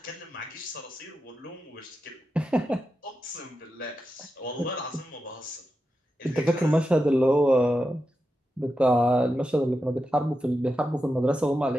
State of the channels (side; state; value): both; normal; correlation 0.89